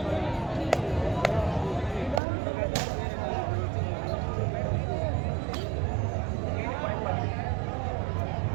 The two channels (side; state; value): left; drops out; at 2.2 s